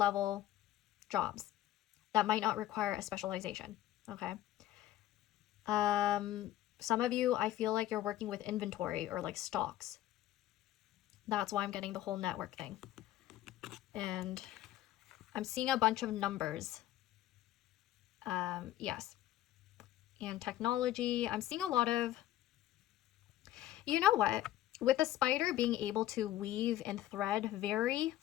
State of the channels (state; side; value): quieter; right; 13.8 dB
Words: jobs that might not require a specialization. Okay. Some of you, I feel like you're working with inventory or like stocks. That's why I'm getting the whole network thing. And I'm seeing a bunch of numbers. Yes. And technology. I'm seeing a lot of, you know what? With the spider being able to weave and thread very